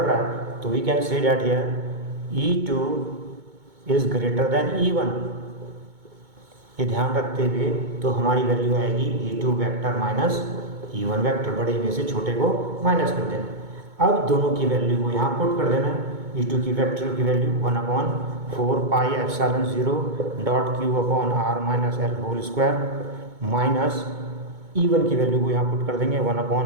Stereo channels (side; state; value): left; late; 2.2 ms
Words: रहा है, तो we can say that here E2 is greater than E1। ये ध्यान रखते हुए तो हमारी वैल्यू आएगी E2 vector minus E1 vector, बड़े में से छोटे को माइनस कर देना। अब दोनों की वैल्यू को यहाँ पुट कर देना, E2 की वेक्टर की value 1/4 pi epsilon 0 dot Q upon R minus L whole square minus E1 की वैल्यू को यहाँ पुट कर देंगे